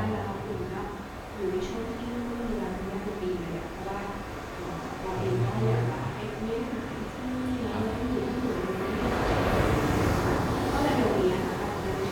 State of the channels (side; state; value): both; identical; correlation 1.00